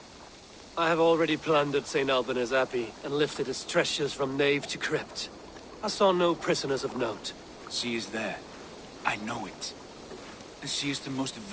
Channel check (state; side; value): identical; both; correlation 1.00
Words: I have already plundered St. Albanese Abbey and lifted its treasures from nave to crypt. I saw no prisoners of note. She is there. I know it. And she is the most